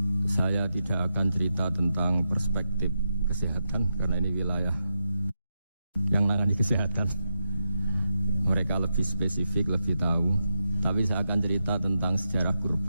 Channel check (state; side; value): inverted; both; correlation -0.87